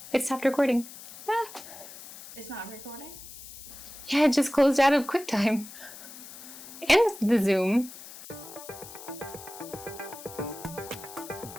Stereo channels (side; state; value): left; noise; hiss, 15 dB below the sound